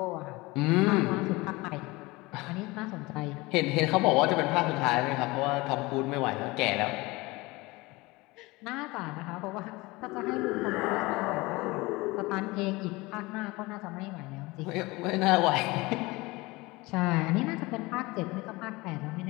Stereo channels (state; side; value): quieter; right; 22.5 dB